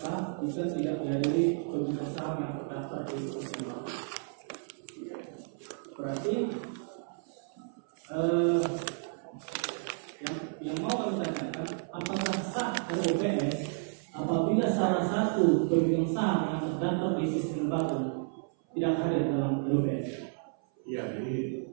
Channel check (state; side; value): silent; left; 56 dB below the other